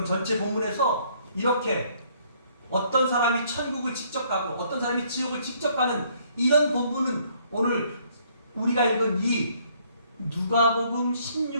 전체 본문에서 이렇게 어떤 사람이 천국을 직접 가고 어떤 사람이 지옥을 직접 가는 이런 본문은 오늘 우리가 읽은 이 누가복음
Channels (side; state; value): both; inverted; correlation -0.65